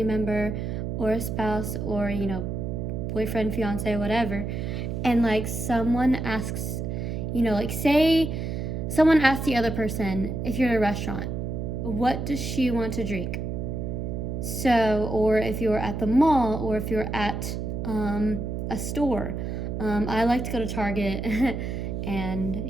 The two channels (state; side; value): noise; right; hum, 3 dB below the sound